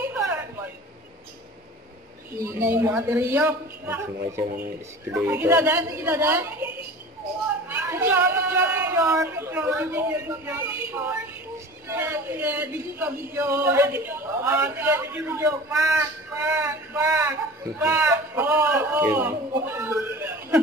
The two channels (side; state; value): both; normal; correlation 0.39